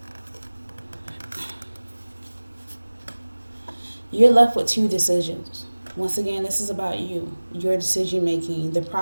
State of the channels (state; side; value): inverted; both; correlation -1.00